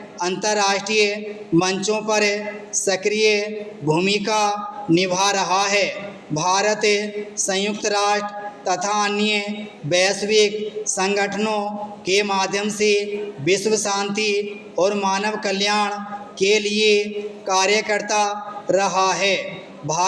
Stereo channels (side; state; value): both; identical; correlation 1.00